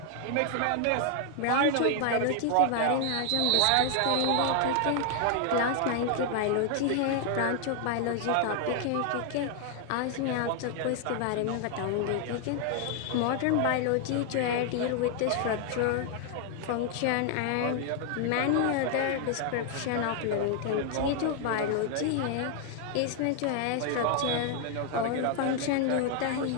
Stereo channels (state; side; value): different; both; correlation 0.00